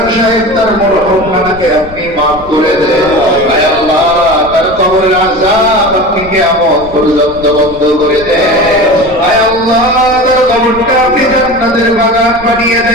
সাহেব তার মরহুম নানাকে আপনি মাফ করে দেন। আয় আল্লাহ, তার কবরের আযাব আপনি কিয়ামত পর্যন্ত বন্ধ করে দেন। আয় আল্লাহ, তার কবরটা আপনি জান্নাতের বাগান বানিয়ে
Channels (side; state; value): left; noise; rumble, 17 dB below the sound